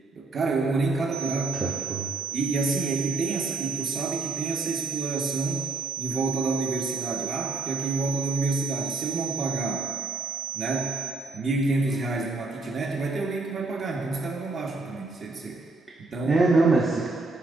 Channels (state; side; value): quieter; left; 3.5 dB